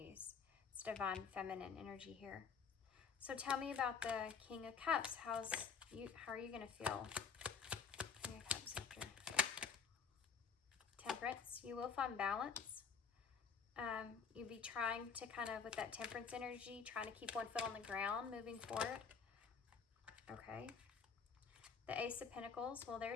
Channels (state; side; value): quieter; right; 6.1 dB